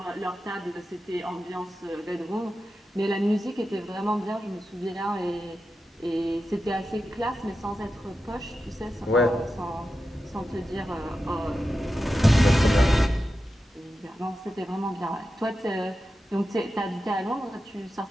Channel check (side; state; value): both; normal; correlation 0.91